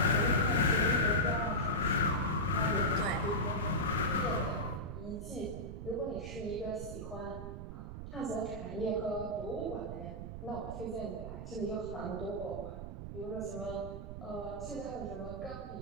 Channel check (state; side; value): noise; right; rumble, 8 dB below the sound